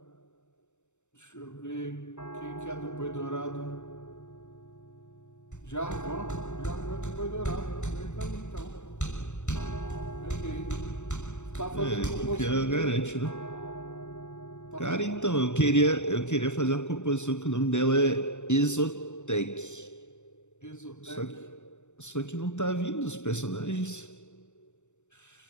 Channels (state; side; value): late; right; 0.84 ms